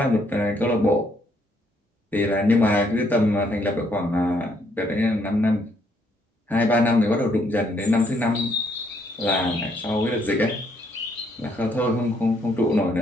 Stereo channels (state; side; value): normal; both; correlation 0.71